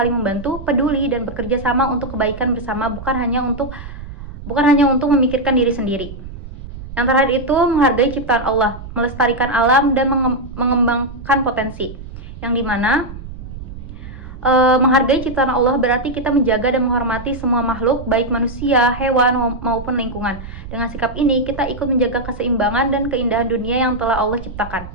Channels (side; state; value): right; noise; rumble, 12 dB below the sound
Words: membantu, peduli, dan bekerja sama untuk kebaikan bersama, bukan hanya untuk memikirkan diri sendiri. Yang terakhir itu menghargai ciptaan Allah, melestarikan alam, dan mengembangkan potensi, yang dimana menghargai ciptaan Allah berarti kita menjaga dan menghormati semua makhluk, baik manusia, hewan, maupun lingkungan. Dengan sikap ini, kita ikut menjaga keseimbangan dan keindahan dunia yang telah Allah ciptakan.